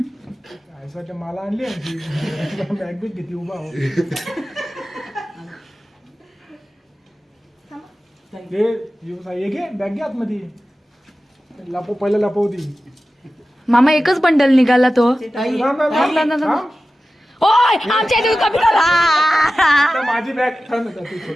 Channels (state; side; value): normal; both; correlation 0.95